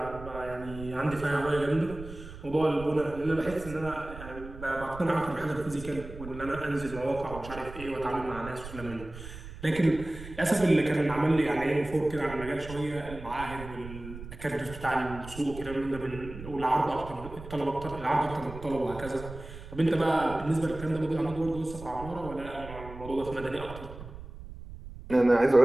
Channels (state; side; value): noise; right; rumble, 13 dB below the sound